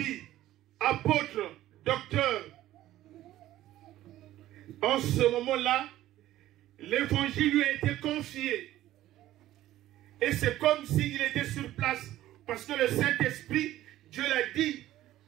apôtre, docteur, en ce moment-là, l'évangile lui a été confié. Et c'est comme s'il était sur place. Parce que le Saint-Esprit, Dieu l'a dit,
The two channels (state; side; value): quieter; left; 14.4 dB